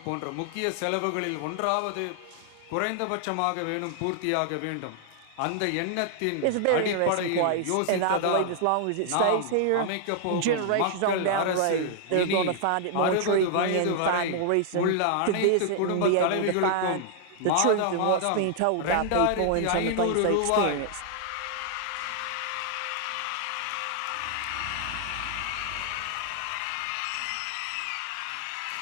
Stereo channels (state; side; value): different; both; correlation 0.00